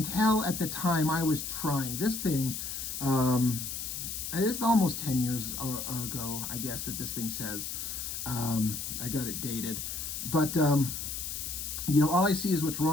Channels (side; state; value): left; noise; hiss, 5 dB below the sound